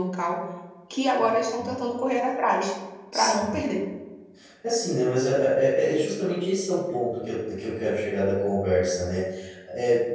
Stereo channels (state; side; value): identical; both; correlation 1.00